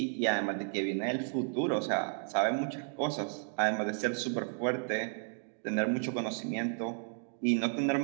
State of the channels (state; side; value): silent; left; 56 dB below the other